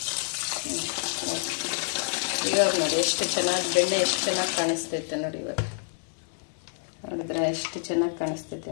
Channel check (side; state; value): right; silent; digital silence